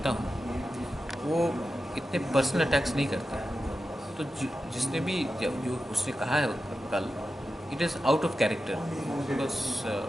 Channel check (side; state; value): both; normal; correlation 0.91